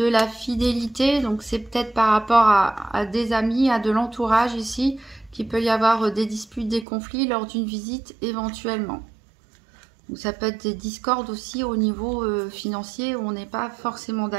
la fidélité. Donc, c'est peut-être par rapport à des amis, à de l'entourage ici, qu'il peut y avoir des disputes, des conflits lors d'une visite éventuellement. Ou ça peut être des discordes aussi au niveau financier où on n'est pas forcément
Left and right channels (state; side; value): drops out; left; at 6.9 s